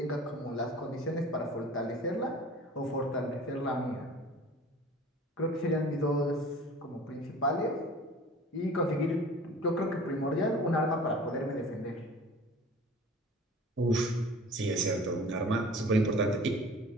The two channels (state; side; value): normal; both; correlation 0.43